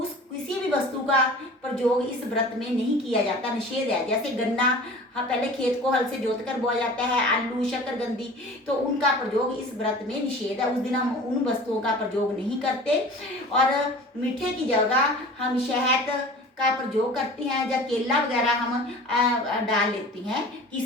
किसी भी वस्तु का प्रयोग इस व्रत में नहीं किया जाता, निषेध है। जैसे गन्ना, हाँ, पहले खेत को हल से जोतकर बोया जाता है, आलू, शकरकंदी, तो उनका प्रयोग इस व्रत में निषेध है। उस दिन हम उन वस्तुओं का प्रयोग नहीं करते। और मीठे की जगह हम शहद का प्रयोग करते हैं, या केला वगैरह हम डाल लेती हैं,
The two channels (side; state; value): both; normal; correlation 0.41